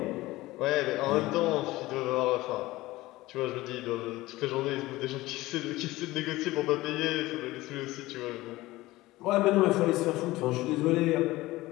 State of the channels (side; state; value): right; quieter; 18.5 dB